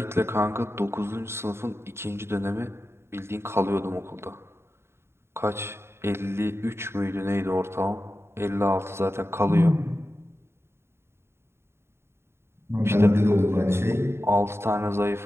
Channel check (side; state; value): left; late; 0.12 ms